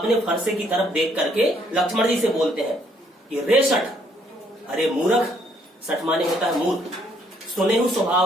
फरसे की तरफ देख करके लक्ष्मण जी से बोलते हैं कि रे सठ, अरे मूर्ख, सठ माने होता है मूर्ख, सुने हूं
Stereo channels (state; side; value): normal; both; correlation 0.68